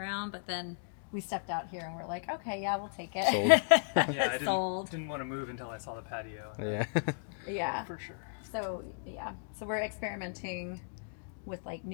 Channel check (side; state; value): right; silent; digital silence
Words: But then we stepped out here and we're like, okay, yeah, we'll take it. Sold. Yeah, I Sold. didn't want to move until I saw the patio. Yeah. Yeah. For sure. So yeah, so we're experimenting with like